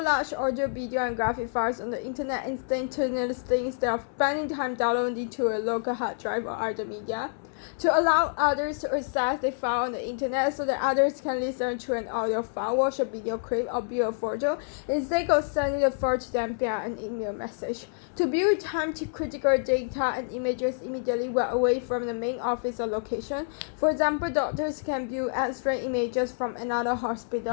large audio, video, and graphic files on the internet instantaneously instead of spending time downloading to a local hard drive or other media. To allow others to access the file on the internet so that others can listen to an audio file, watch a video clip, or view a photo instead of sending the file to them via an email message. To view time-critical data and images immediately while away from the main office or location. For example, doctors can view X-ray images from another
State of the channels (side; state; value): right; silent; 60 dB below the other